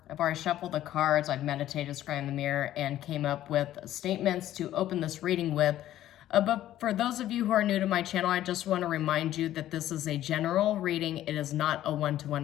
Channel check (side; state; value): right; quieter; 13.0 dB